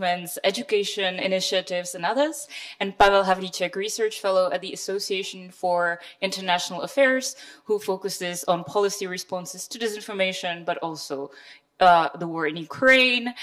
education initiatives, and others. And Pavel Havlíček, research fellow at the Association for International Affairs, who focuses on policy responses to disinformation, but also the war in Ukraine,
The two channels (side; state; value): both; identical; correlation 1.00